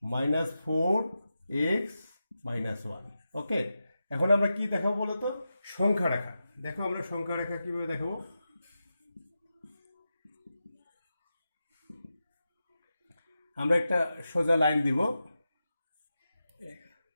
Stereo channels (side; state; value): both; inverted; correlation -0.90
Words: -4x - 1। ওকে, এখন আমরা কি দেখাবো বলতো, সংখ্যা রেখা। দেখো আমরা সংখ্যা রেখা কিভাবে দেখাবো। আমরা একটা সোজা লাইন দিব,